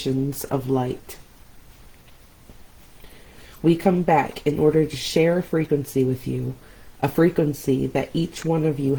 of light. We come back in order to share a frequency with you, a frequency that each one of you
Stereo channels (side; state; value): both; identical; correlation 1.00